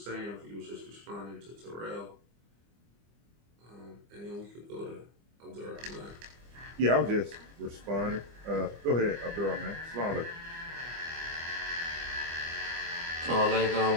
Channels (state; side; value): late; left; 25 ms